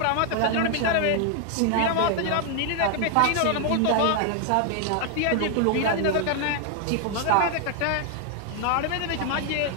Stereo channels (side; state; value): both; different; correlation 0.00